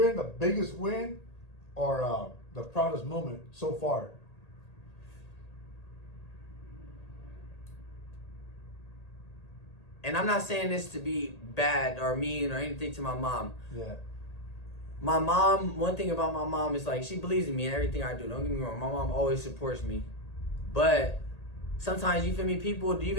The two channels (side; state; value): right; late; 1.8 ms